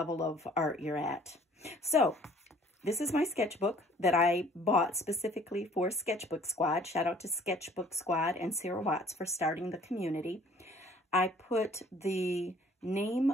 of art you're at. So this is my sketchbook that I bought specifically for Sketchbook Squad. Shout out to Sketchbook Squad and Sarah Watts for starting the community. I put the name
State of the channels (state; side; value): normal; both; correlation 0.55